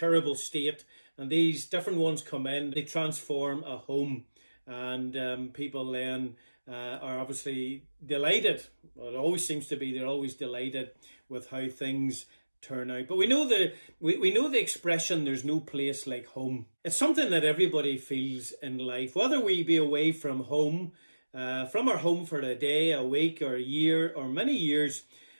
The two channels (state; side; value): inverted; both; correlation -1.00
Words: state, and these different ones come in. They transform a home, and people then are obviously delighted. Well, it always seems to be. They're always delighted with how things turn out. But we know the expression, there's no place like home. It's something that everybody feels in life, whether we be away from home, from our home for a day, a week, or a year, or many years.